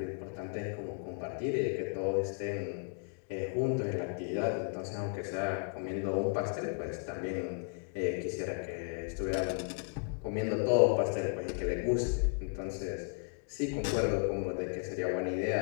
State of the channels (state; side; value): silent; right; 55 dB below the other